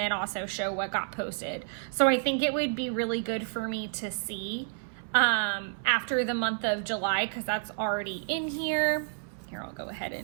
also show what got posted. So I think it would be really good for me to see after the month of July, because that's already in here. Here, I'll go ahead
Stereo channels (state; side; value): silent; left; 58 dB below the other